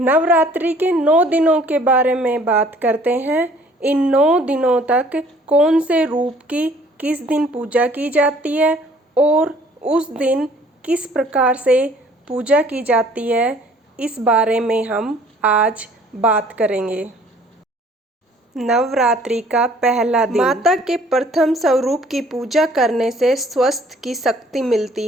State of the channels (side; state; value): both; normal; correlation 0.56